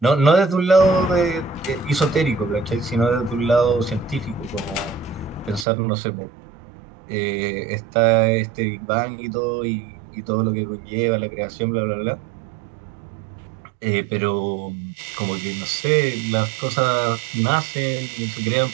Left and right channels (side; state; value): left; drops out; at 5.7 s